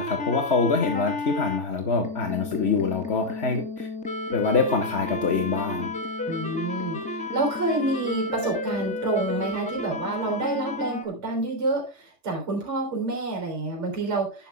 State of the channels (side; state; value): left; late; 3.4 ms